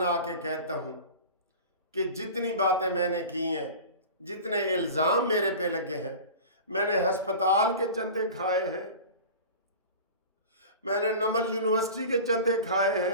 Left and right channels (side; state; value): both; inverted; correlation -0.36